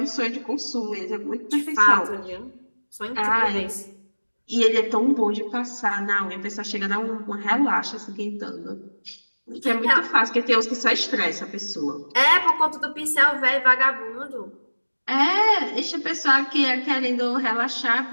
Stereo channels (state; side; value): inverted; both; correlation -1.00